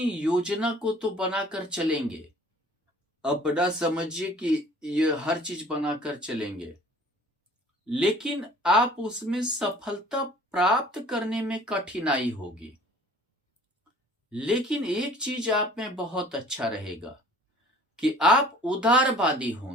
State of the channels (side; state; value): both; normal; correlation 0.50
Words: योजना को तो बनाकर चलेंगे, अपना समझिए कि ये हर चीज बनाकर चलेंगे, लेकिन आप उसमें सफलता प्राप्त करने में कठिनाई होगी। लेकिन एक चीज आप में बहुत अच्छा रहेगा कि आप उदारवादी